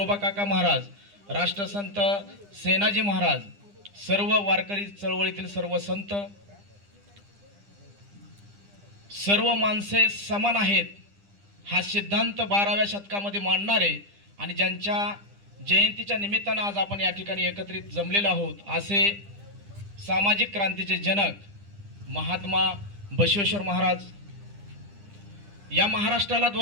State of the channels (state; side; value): late; left; 9.9 ms